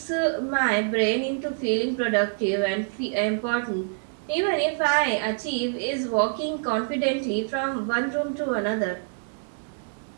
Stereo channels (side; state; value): left; silent; 59 dB below the other